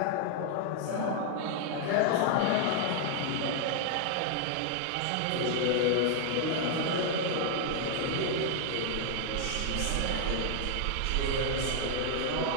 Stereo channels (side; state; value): both; different; correlation 0.00